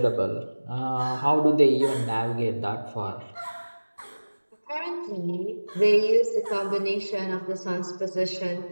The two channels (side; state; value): both; inverted; correlation -1.00